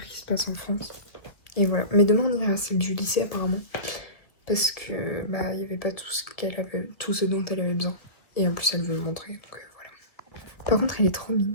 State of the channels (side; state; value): right; late; 1.9 ms